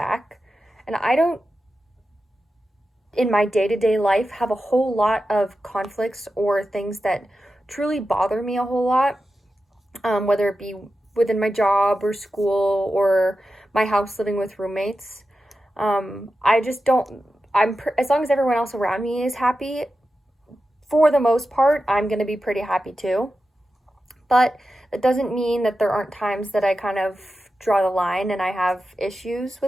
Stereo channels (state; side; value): normal; both; correlation 0.91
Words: and I don't, in my day to day life, have a whole lot of conflicts or things that truly bother me a whole lot, whether it be within my job or school or my house living with roommates. I just don't, as long as everyone else around me is happy, for the most part, I'm going to be pretty happy too. But that doesn't mean that there aren't times that I kind of draw the line and I have issues